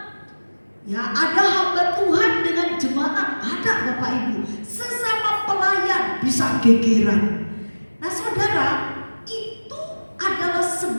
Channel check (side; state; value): both; inverted; correlation -1.00